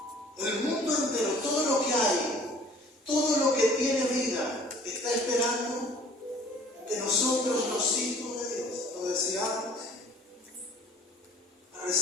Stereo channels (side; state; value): both; normal; correlation 0.52